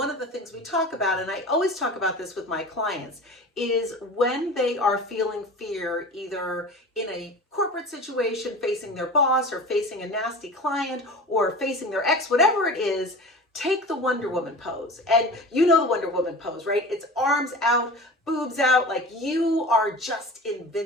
of the things we talk about, and I always talk about this with my clients, is when they are feeling fear, either in a corporate situation facing their boss or facing a nasty client or facing their ex, whatever it is, take the Wonder Woman pose. And you know the Wonder Woman pose, right? It's arms out, boobs out, like you are just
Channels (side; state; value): both; normal; correlation 0.35